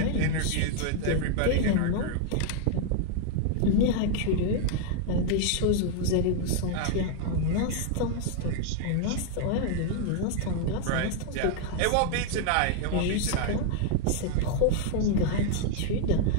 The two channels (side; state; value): both; different; correlation 0.00